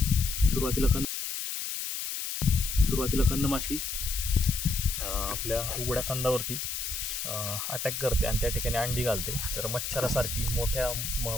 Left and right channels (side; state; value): left; noise; hiss, 4 dB below the sound